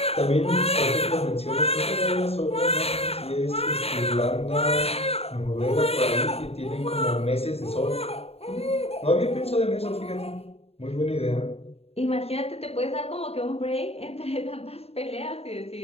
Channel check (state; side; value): late; right; 0.29 ms